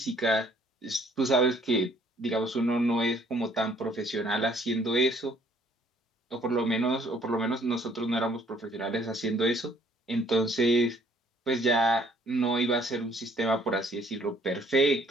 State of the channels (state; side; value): normal; both; correlation 0.61